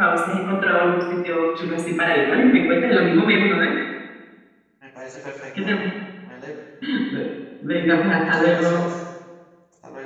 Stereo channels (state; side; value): identical; both; correlation 1.00